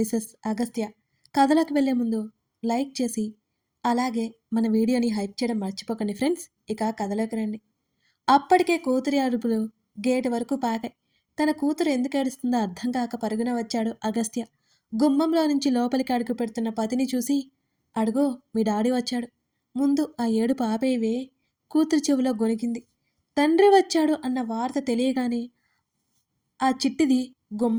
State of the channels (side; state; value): both; identical; correlation 1.00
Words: అగస్త్య. కథలోకి వెళ్ళే ముందు లైక్ చేసి అలాగే మన వీడియోని హైప్ చేయడం మర్చిపోకండి ఫ్రెండ్స్. ఇక కథలోకి రండి. అప్పటికే కూతురి అరుపులు గేటు వరకు పాకాయి. తన కూతురు ఎందుకు ఏడుస్తుందో అర్థం కాక పరుగున వచ్చాడు అగస్త్య. గుమ్మంలో నుంచి లోపలికి అడుగు పెడుతున్న పతిని చూసి, అడుగో మీ డాడీ వచ్చాడు, ముందు ఆ ఏడుపు ఆపేవే. కూతురు చెవిలో గొనిగింది. తండ్రి వచ్చాడు అన్న వార్త తెలియగానే ఆ చిట్టిది